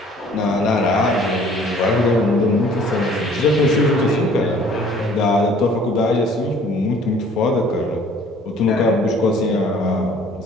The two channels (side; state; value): both; normal; correlation 0.54